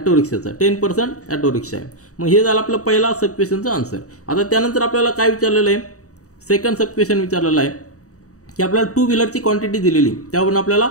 रिक्षाचा 10% ऑटो रिक्षा आहे. मग हे झालं आपलं पहिला सब क्वेश्चनचा आन्सर. आता त्यानंतर आपल्याला काय विचारलेलं आहे सेकंड सब क्वेश्चन विचारलेला आहे की आपल्याला टू व्हीलरची क्वांटिटी दिलेली, त्यावरून आपल्याला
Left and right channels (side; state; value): right; late; 0.66 ms